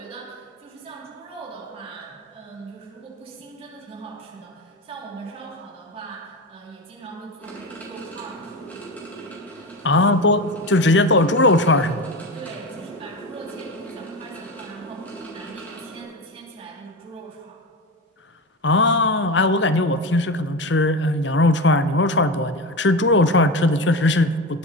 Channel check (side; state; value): both; normal; correlation 0.22